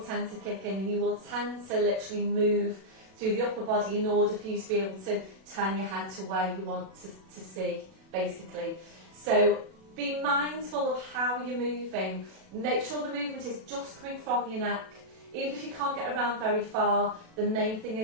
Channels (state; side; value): late; left; 37 ms